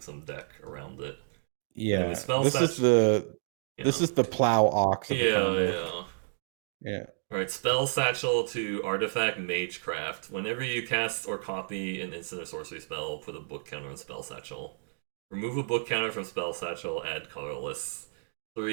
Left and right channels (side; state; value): left; silent; digital silence